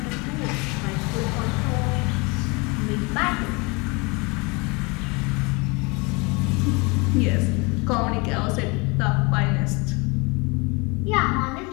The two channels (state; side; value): quieter; right; 28.0 dB